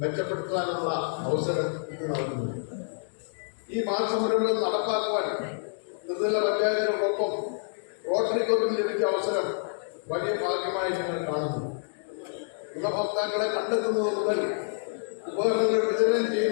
മെച്ചപ്പെടുത്താനുള്ള അവസരം ഇത് നൽകുന്നു. ഈ മാസമരങ്ങൾ നടപ്പാക്കുവാൻ ത്രിതല പഞ്ചായത്തിനോടൊപ്പം റോട്ടറി ക്ലബിന് ലഭിച്ച അവസരം വലിയ ഭാഗ്യമായി ഞങ്ങൾ കാണുന്നു. ഗുണഭോക്താക്കളെ കണ്ടെത്തുന്നത് മുതൽ ഉപകരണങ്ങൾ വിതരണം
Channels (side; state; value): right; silent; digital silence